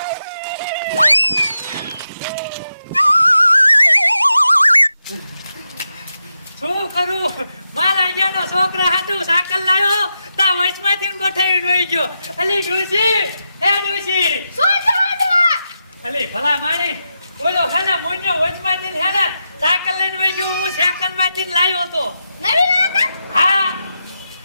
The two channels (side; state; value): both; inverted; correlation -0.87